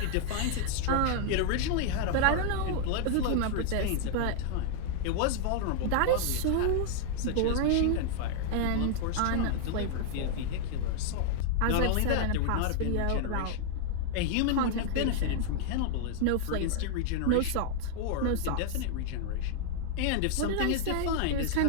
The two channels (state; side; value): different; both; correlation 0.00